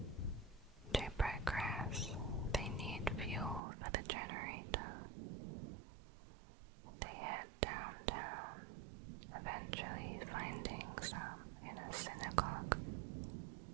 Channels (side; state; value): left; drops out; at 3.6 s